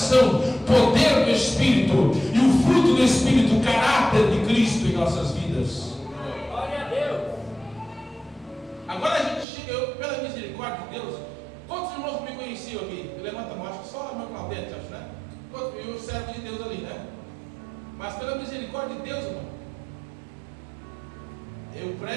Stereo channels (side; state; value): left; drops out; at 9.5 s